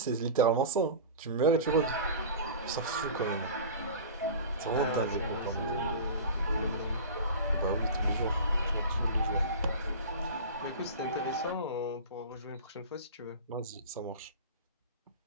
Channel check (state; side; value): inverted; both; correlation -0.33